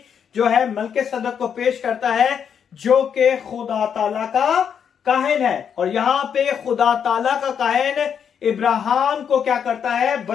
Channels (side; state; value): right; quieter; 7.7 dB